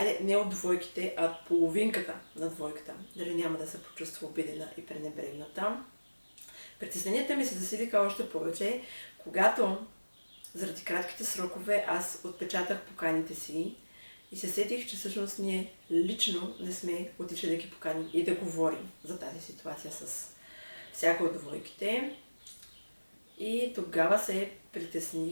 не от двойките, а от половинката на двойката. Дали няма да се почувства обидена и пренебрегната. Притесненията ми се засилиха още повече, когато заради кратките срокове аз отпечатах поканите си и се сетих, че всъщност ние лично не сме отишли да ги поканим и да говорим за тази ситуация с всяка от двойките. И тогава се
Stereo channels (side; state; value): both; inverted; correlation -1.00